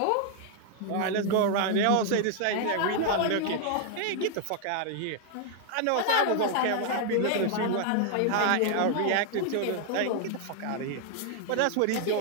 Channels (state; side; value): different; both; correlation 0.00